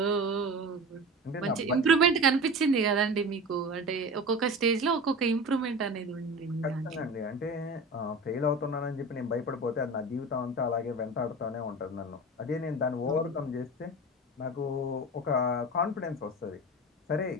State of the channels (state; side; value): normal; both; correlation 0.32